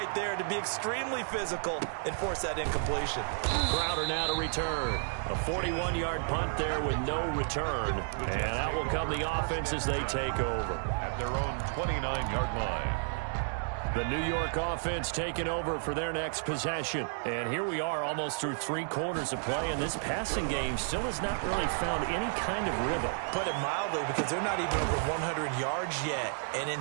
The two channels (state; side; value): silent; left; digital silence